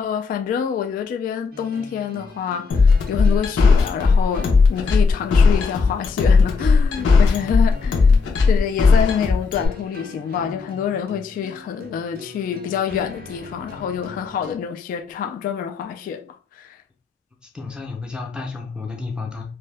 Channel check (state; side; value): quieter; right; 4.7 dB